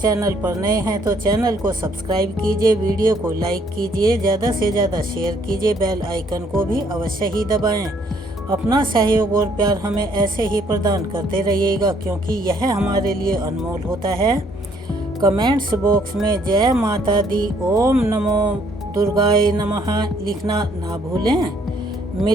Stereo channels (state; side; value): normal; both; correlation 0.66